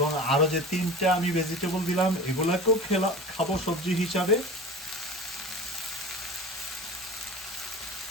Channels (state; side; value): normal; both; correlation 0.35